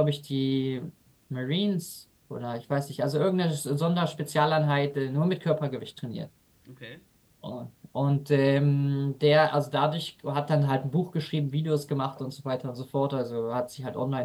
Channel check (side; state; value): both; identical; correlation 1.00